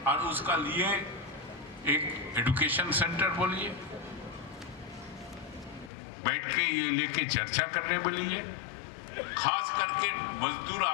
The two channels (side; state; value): right; drops out; at 5.9 s